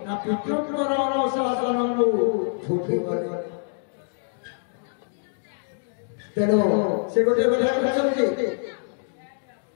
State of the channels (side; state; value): right; silent; digital silence